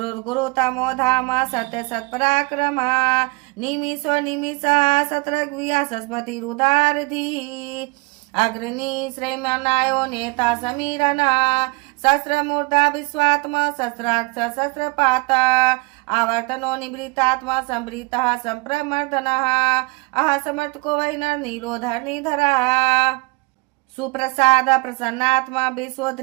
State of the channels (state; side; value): quieter; left; 27.9 dB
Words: धाम सत्य सत्पराक्रमा निमिषो निमिषः सत्रग्विया सरस्वतीरुदारधि अग्रणी श्रेयमनायो नेता समीरना सहस्रमूर्धा विश्वात्मा सहस्राक्ष सहस्रपाता आवर्तनो निवृत्तात्मा संवृतः संप्रमर्दनः अह समर्थको वैनर नीलोधरनिधरः सुप्रसाद प्रसन्नात्मा